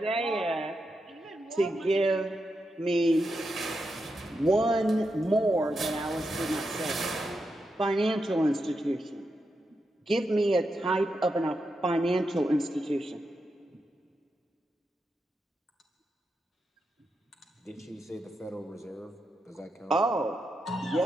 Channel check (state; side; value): normal; both; correlation 0.86